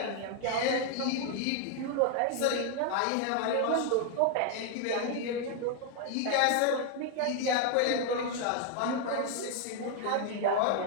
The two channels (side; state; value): both; different; correlation 0.00